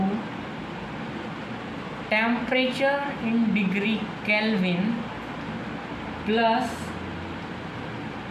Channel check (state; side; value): identical; both; correlation 1.00